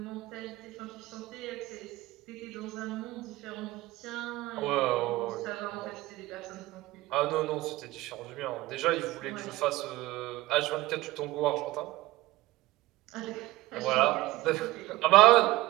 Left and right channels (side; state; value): left; quieter; 18.3 dB